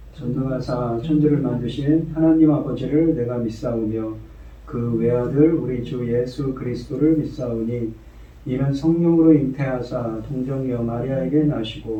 전능하사 천지를 만드신 하나님 아버지를 내가 믿사오며 그 외아들 우리 주 예수 그리스도를 믿사오니 이는 성령으로 잉태하사 동정녀 마리아에게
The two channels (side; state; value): both; identical; correlation 1.00